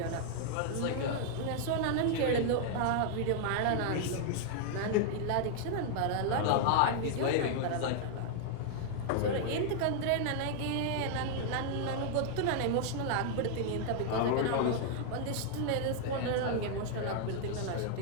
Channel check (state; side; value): different; both; correlation 0.00